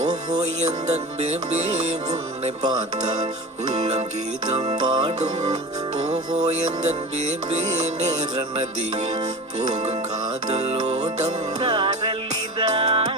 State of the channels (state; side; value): normal; both; correlation 0.32